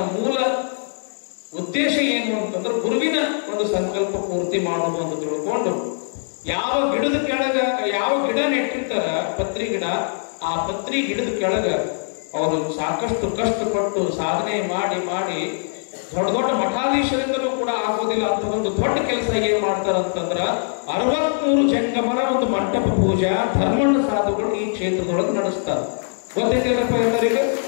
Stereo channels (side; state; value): right; silent; digital silence